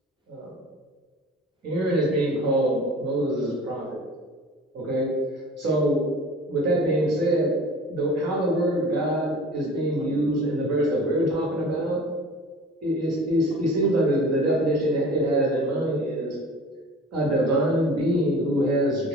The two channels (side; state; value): both; normal; correlation 0.42